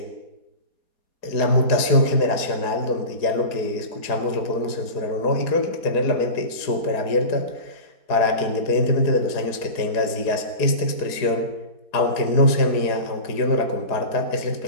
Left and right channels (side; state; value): right; late; 4.8 ms